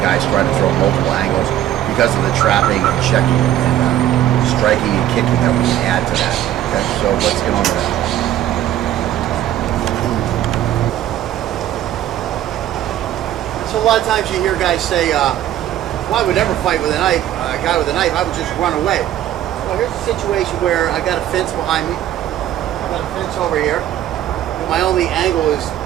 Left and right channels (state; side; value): quieter; left; 12.1 dB